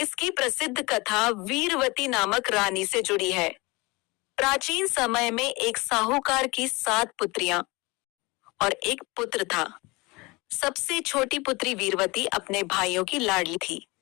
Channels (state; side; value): quieter; right; 24.4 dB